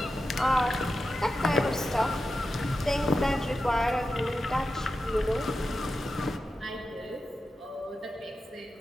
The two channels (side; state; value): both; normal; correlation 0.91